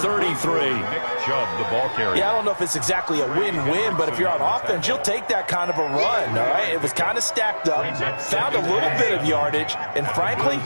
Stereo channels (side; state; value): both; inverted; correlation -1.00